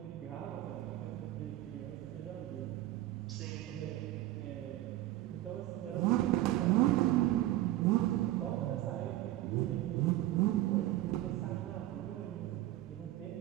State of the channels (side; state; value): left; quieter; 15.3 dB